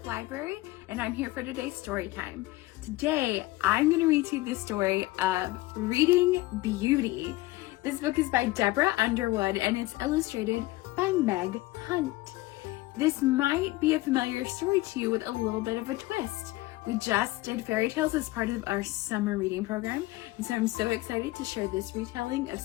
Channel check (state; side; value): quieter; right; 19.1 dB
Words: Library, and I'm here for today's story time. Today, I'm going to read to you the story of Reading Beauty. This book is by Deborah Underwood, and it's illustrated by Meg Hunt. This might be a familiar story to you with a little bit of a twist. We just did fairy tales as part of our summer reading program, and so I'm so excited to share this retelling of